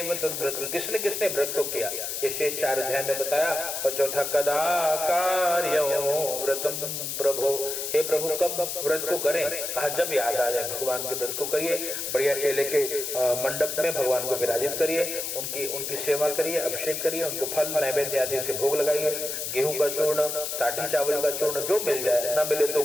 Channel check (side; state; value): left; noise; hiss, 4 dB below the sound